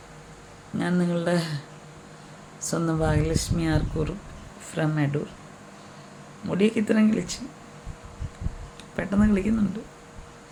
ഞാൻ നിങ്ങളുടെ സ്വന്തം ഭാഗ്യലക്ഷ്മി ആർക്കൂർ ഫ്രം അടൂർ. മുടിയൊക്കെ ഇത്രയും കിളിച്ച് പെട്ടെന്ന് കിളിക്കുന്നുണ്ട്.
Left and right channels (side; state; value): both; identical; correlation 1.00